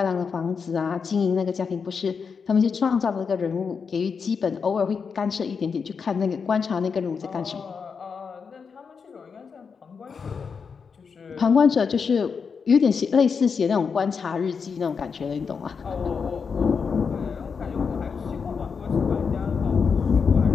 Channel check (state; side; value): quieter; right; 5.8 dB